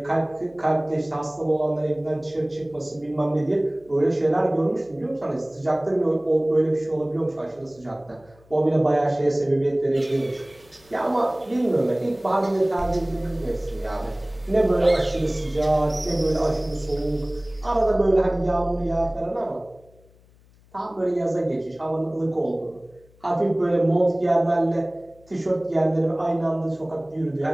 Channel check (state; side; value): noise; left; hum, 29 dB below the sound